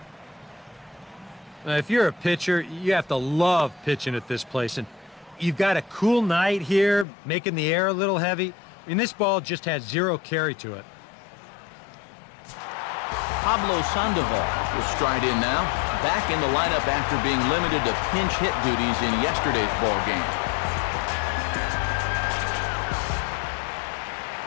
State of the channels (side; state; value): right; drops out; at 7.1 s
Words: If you're a pitcher, you have to love pitching at this place. And you've got a cool night here, making the air a little heavy. I mean, this ball just has 0 carry to it. Pablo Sandoval will stride in now, back in the lineup after being limited to pinch hit duties in yesterday's ball game.